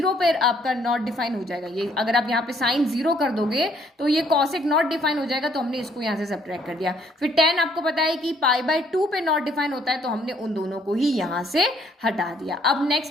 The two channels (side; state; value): both; normal; correlation 0.65